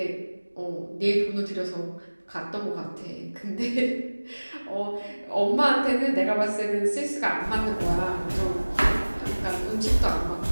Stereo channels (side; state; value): both; inverted; correlation -1.00